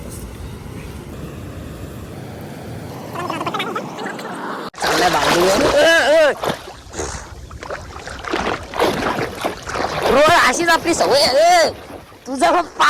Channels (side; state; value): both; identical; correlation 1.00